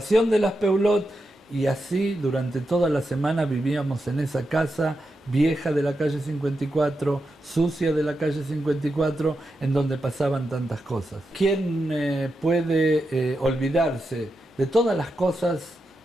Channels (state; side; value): normal; both; correlation 0.87